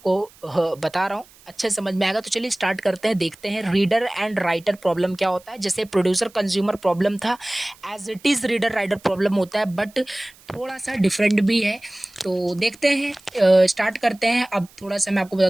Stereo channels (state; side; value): noise; right; hiss, 26 dB below the sound